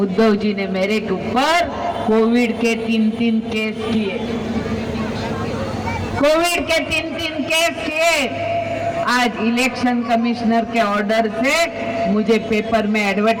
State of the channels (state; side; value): identical; both; correlation 1.00